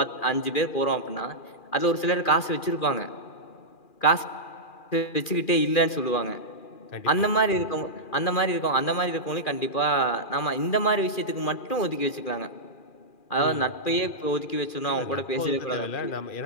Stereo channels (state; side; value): late; right; 2.4 ms